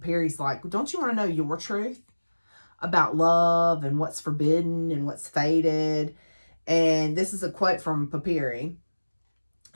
like, don't you want to know your truth about love and what's forbidden and what's fated? And this is a quote from Papyri.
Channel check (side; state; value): both; inverted; correlation -1.00